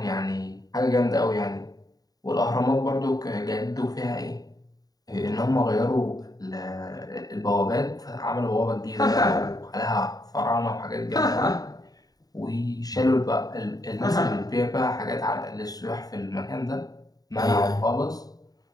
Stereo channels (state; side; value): late; right; 0.18 ms